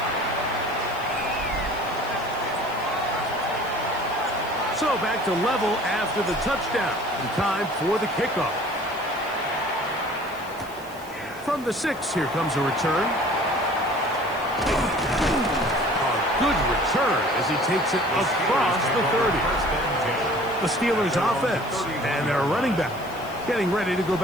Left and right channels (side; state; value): left; noise; hiss, 21 dB below the sound